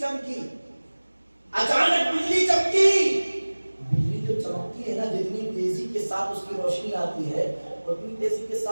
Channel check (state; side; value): inverted; both; correlation -1.00